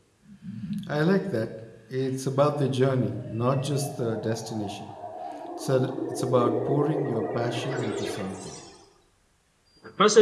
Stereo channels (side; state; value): both; identical; correlation 1.00